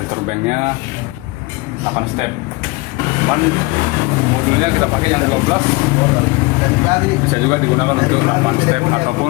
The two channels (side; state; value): right; quieter; 24.7 dB